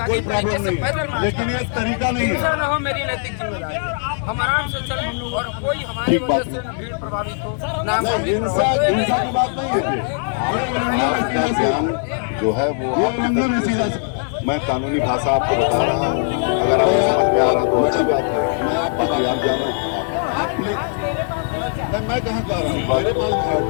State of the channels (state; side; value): silent; right; 64 dB below the other